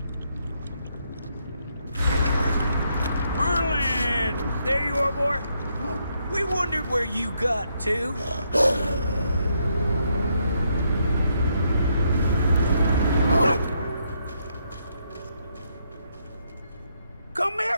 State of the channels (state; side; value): inverted; both; correlation -0.76